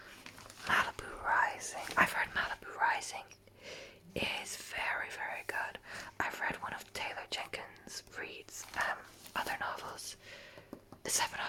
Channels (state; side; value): identical; both; correlation 1.00